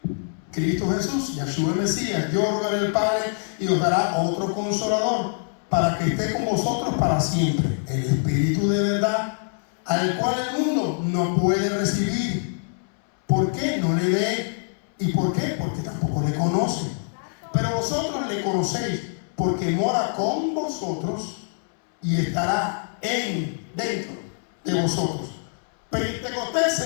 Cristo Jesús, Yahshua el Mesías. Yo rogaré al Padre y os dará otro consolador para que esté con vosotros para siempre, el Espíritu de verdad, al cual el mundo no puede recibir. ¿Por qué? No le ve. ¿Y por qué? Porque tampoco le conoce. Pero vosotros le conocéis, porque mora con vosotros y estará dentro de vosotros. Pentecostés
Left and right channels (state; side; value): silent; right; 62 dB below the other